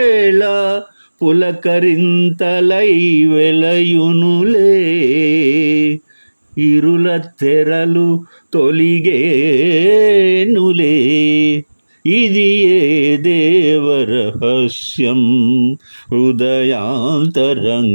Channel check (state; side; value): inverted; both; correlation -1.00